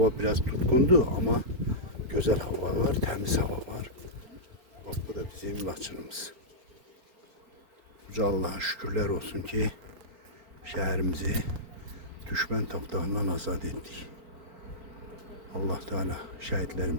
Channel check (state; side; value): late; left; 4.3 ms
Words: biraz tutkundu ama güzel hava var, temiz hava var. Bak bu da bizim Laçınımız. Uca Allah'a şükürler olsun ki şehrimizi düşman tapdağından azad ettik. Allah Teala